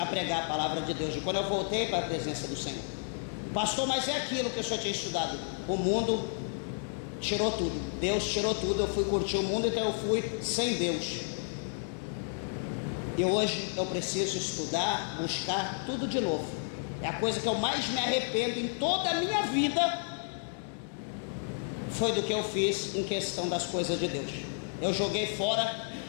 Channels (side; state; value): right; silent; digital silence